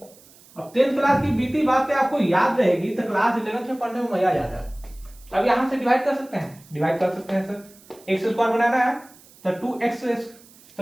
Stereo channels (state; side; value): noise; right; hiss, 25 dB below the sound